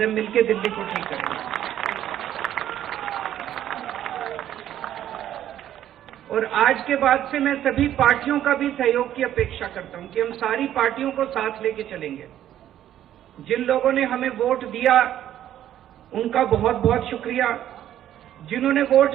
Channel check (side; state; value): left; quieter; 11.6 dB